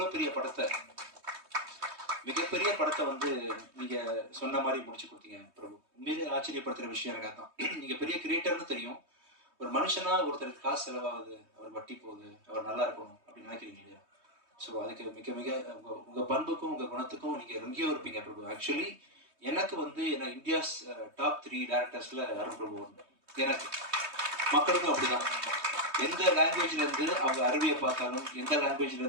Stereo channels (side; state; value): left; late; 3.2 ms